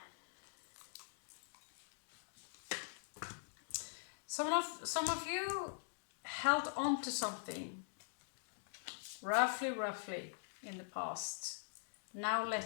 Some of you held on to something roughly in the past. Now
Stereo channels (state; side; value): silent; right; digital silence